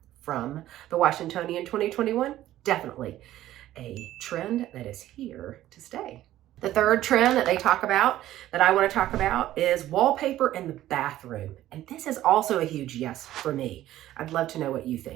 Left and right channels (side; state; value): left; quieter; 13.9 dB